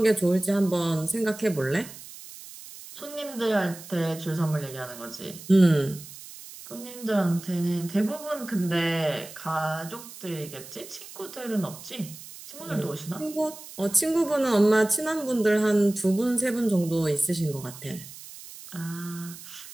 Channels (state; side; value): noise; right; hiss, 15 dB below the sound